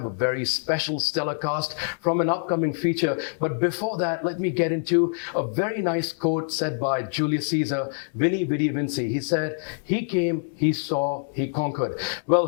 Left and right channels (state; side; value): silent; right; digital silence